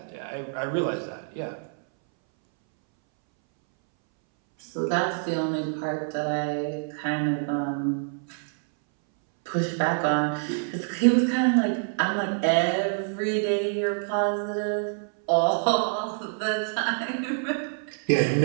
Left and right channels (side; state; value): left; silent; 61 dB below the other